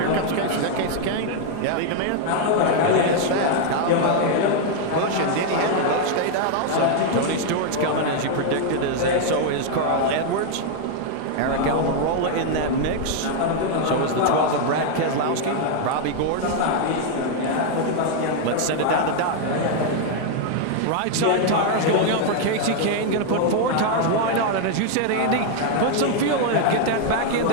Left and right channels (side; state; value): both; different; correlation 0.00